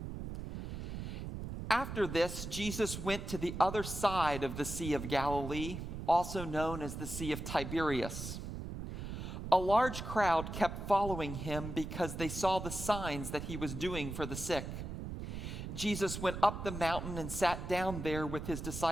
After this, Jesus went to the other side of the Sea of Galilee, also known as the Sea of Tiberias. A large crowd kept following him because they saw the signs that he was doing for the sick. Jesus went up the mountain and sat down there with his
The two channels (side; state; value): right; noise; rumble, 7 dB below the sound